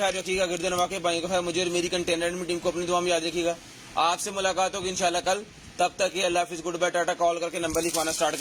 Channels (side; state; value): both; identical; correlation 1.00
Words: रखिएगा, गिरदन वाकई भाई का ख्याल, मुझे और मेरी कंटेनर टीम को अपनी दुआ में याद रखिएगा। आपसे मुलाकात होगी इंशाल्लाह कल। तब तक ये अल्लाह हाफिज़, गुड बाय, टाटा। कॉल करके नंबर लिखवाना स्टार्ट